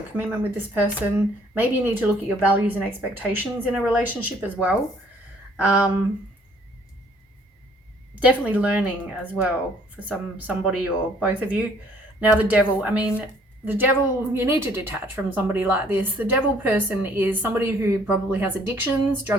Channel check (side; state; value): both; normal; correlation 0.61